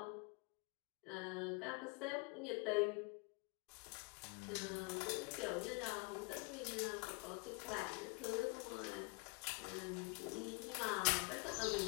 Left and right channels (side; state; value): right; quieter; 30.1 dB